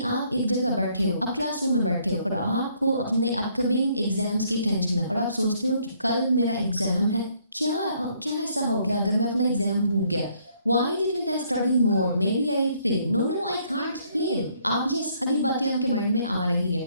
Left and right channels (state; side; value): inverted; both; correlation -0.67